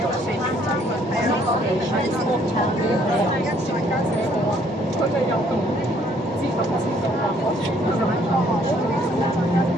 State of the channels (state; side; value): normal; both; correlation 0.64